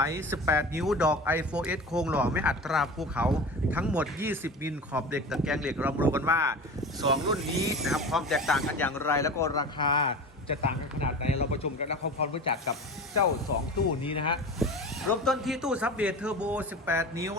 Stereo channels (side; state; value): both; normal; correlation 0.33